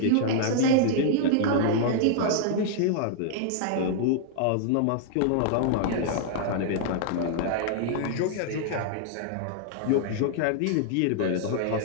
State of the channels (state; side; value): different; both; correlation -0.01